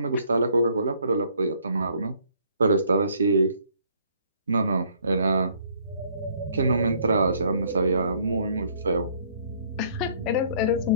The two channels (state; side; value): inverted; both; correlation -0.62